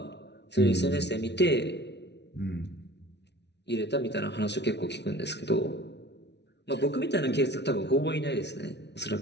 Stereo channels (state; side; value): late; right; 0.50 ms